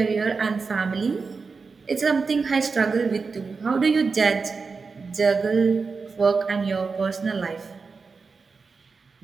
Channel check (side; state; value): left; quieter; 4.7 dB